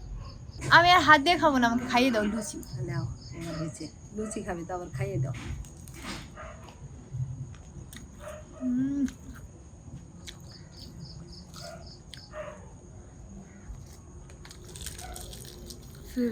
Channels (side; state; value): both; identical; correlation 1.00